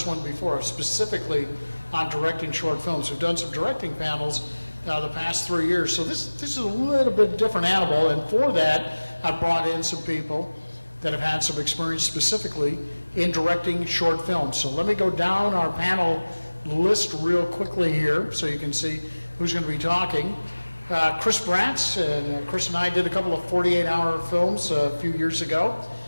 one before, specifically on directing short films. We've done some directing panels the past 3 years, so this is a little bit different animal, and for that I've brought in some people that have had some experience specifically in directing short films. So let me go down our panel list real quickly here so you can see who's going to be talking. Chris Bratz, and Chris and I did a couple of 48-hour films a few years ago.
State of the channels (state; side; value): inverted; both; correlation -1.00